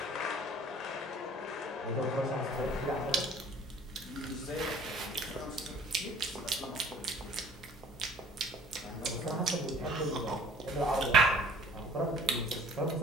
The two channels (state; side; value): normal; both; correlation 0.51